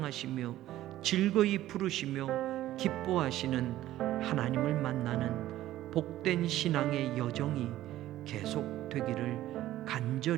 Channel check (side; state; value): left; quieter; 14.3 dB